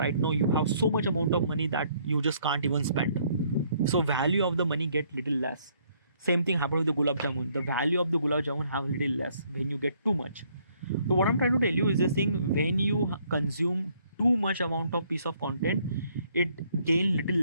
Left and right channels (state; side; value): inverted; both; correlation -0.66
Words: now you have so much amount of money that you just can't even spend. So value of the money get little less. Same thing happened with the gulab jamun. The value of the gulab jamun have little less when you get too much. So what I'm trying to tell you is this thing: when you consume too much amount of piece of content, it gain little